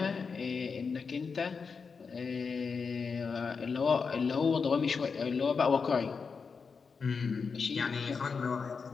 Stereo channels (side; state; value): right; quieter; 5.3 dB